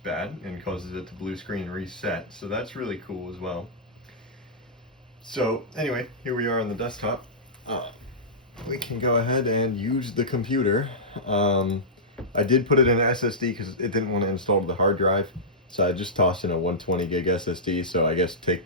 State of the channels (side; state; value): both; normal; correlation -0.14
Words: and causes it to blue screen reset, so that's really cool as well. So anyway, here we are on the desktop. We can go ahead and use the computer. I did put it in an SSD because it didn't want to install the hard drive, so I just tossed in a 120 gig SSD, so I guess take